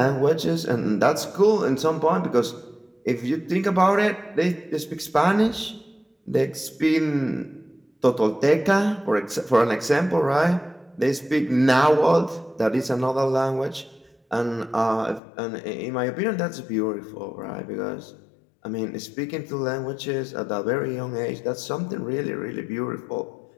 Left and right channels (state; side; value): drops out; right; at 15.2 s